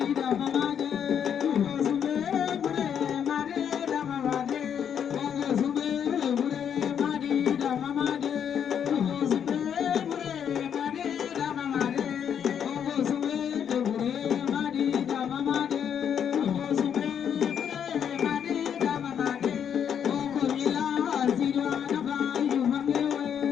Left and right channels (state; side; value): quieter; right; 8.3 dB